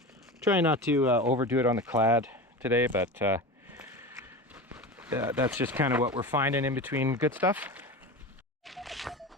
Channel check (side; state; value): both; normal; correlation 0.28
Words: Try not to overdo it on the clad today, but that's just kind of what we're finding in between good stuff.